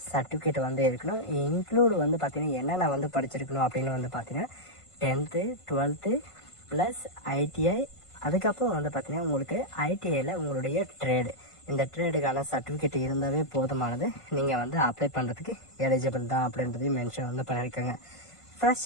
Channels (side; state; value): right; late; 1.5 ms